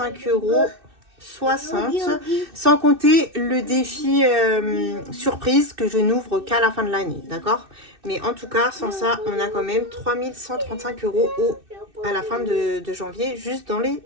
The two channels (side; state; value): left; late; 2.6 ms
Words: € 60, sans compter le défi surprise que je n'ouvre qu'à la fin de l'année, d'accord? Mais en tout cas, sans ça, on a quand même 3135 € à la fin de janvier, juste dans les